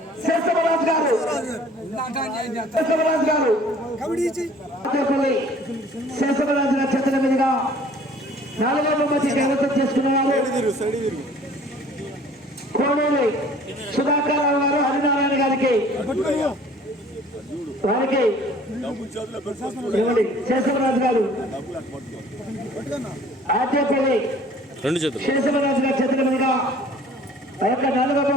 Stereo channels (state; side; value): normal; both; correlation 0.52